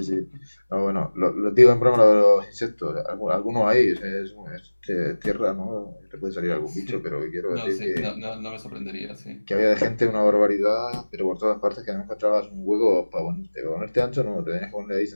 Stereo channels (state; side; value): inverted; both; correlation -1.00